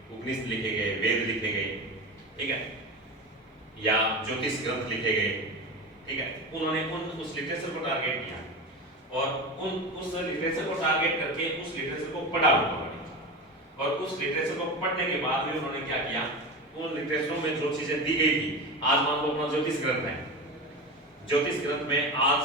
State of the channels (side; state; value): both; normal; correlation 0.25